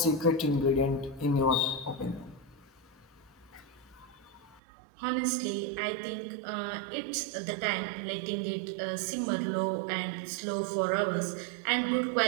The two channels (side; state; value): left; drops out; at 4.6 s